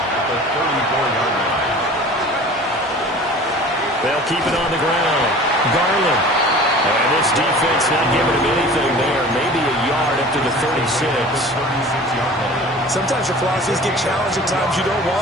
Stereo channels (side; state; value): both; normal; correlation 0.42